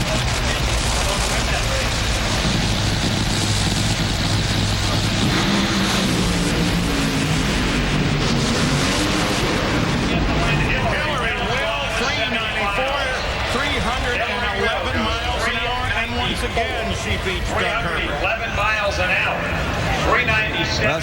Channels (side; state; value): both; identical; correlation 1.00